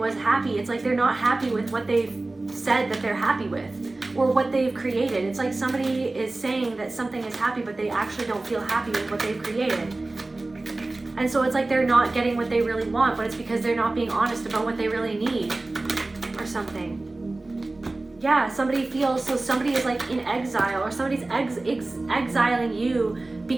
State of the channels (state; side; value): quieter; left; 3.1 dB